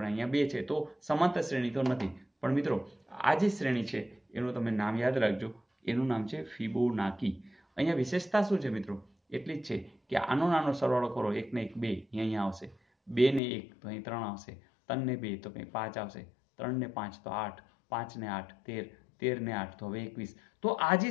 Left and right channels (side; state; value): right; drops out; at 13.4 s